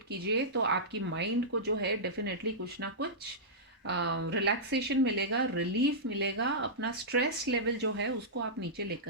कीजिए, तो आपकी माइंड को जो है डेफिनेटली कुछ ना कुछ रिलैक्सेशन मिलेगा, रिलीफ मिलेगा, अपना स्ट्रेस लेवल जो है उसको आप नीचे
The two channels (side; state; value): both; normal; correlation -0.14